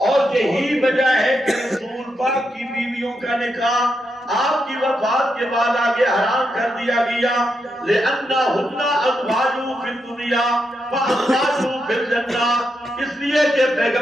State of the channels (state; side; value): normal; both; correlation 0.83